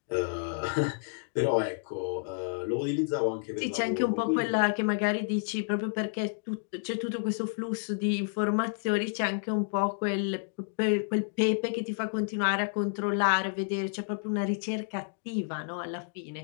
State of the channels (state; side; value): silent; right; digital silence